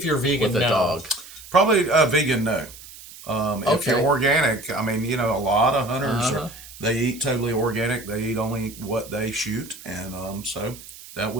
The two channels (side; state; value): right; noise; hiss, 17 dB below the sound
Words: you're vegan, with a no. dog? Probably vegan, no. If Okay. you're organic, I mean, you know, a lot of hunters, Uh-huh. they eat totally organic. They eat only what they shoot. And so that